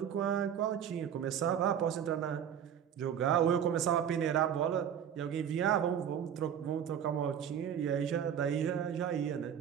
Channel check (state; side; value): quieter; left; 8.9 dB